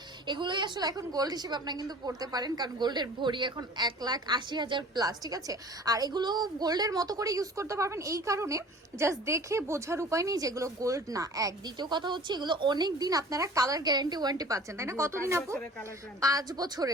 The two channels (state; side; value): normal; both; correlation 0.46